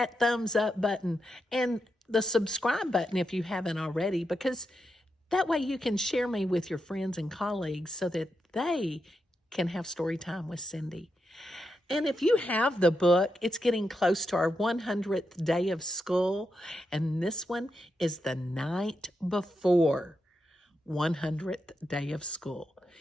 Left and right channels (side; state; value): both; normal; correlation 0.85